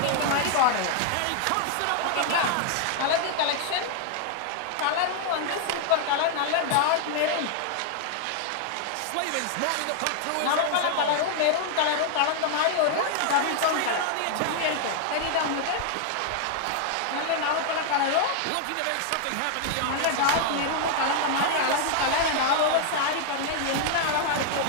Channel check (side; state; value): both; different; correlation 0.00